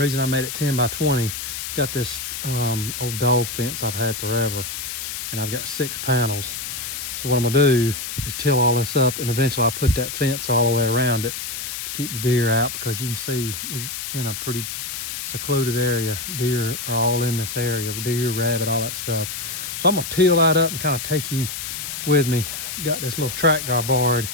I made it 10 by 20, I've got this old dog fence I've had forever, and I've got 6 panels. So what I'm gonna do is till all this up, and eventually I'll put that fence all the way around it to keep the deer out, because you can see we in a pretty secluded area. Deer are all in this area, deer, rabbit, all that stuff. So I'm gonna till that up and kind of take you with me. Got this little tractor I borrowed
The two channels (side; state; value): left; noise; hiss, 6 dB below the sound